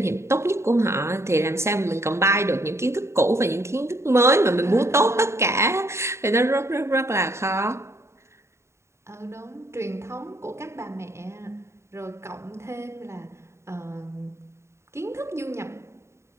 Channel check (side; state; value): left; late; 0.13 ms